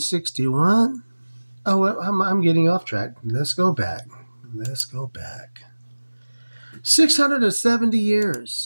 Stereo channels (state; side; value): inverted; both; correlation -1.00